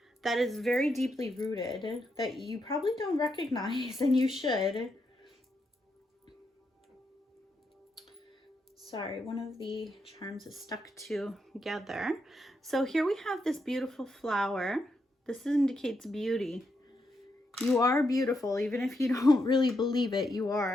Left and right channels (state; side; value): normal; both; correlation 0.81